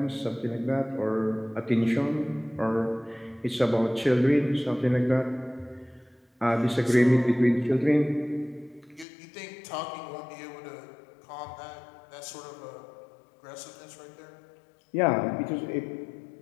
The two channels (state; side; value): drops out; right; at 9.1 s